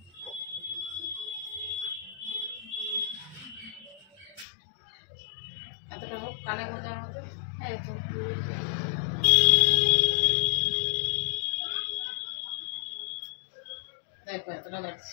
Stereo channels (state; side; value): drops out; right; at 4.5 s